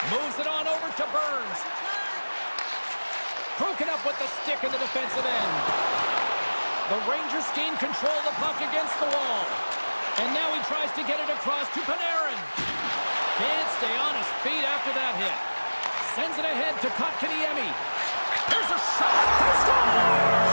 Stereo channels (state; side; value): inverted; both; correlation -1.00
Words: Moves it on over to Burns. Broken up with the stick in the defensive end. The Rangers gain control of the puck against the wall. And now he tries to get it across to Panarin. Can't stay on his feet after that hit. Sends it ahead to Kotkaniemi. There's a shot. They score!